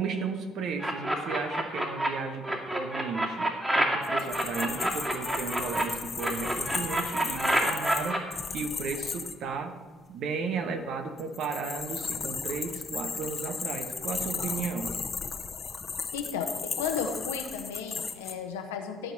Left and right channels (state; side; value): normal; both; correlation 0.71